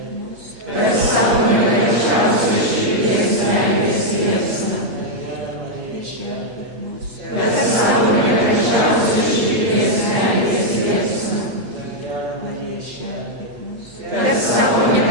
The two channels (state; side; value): late; left; 8.6 ms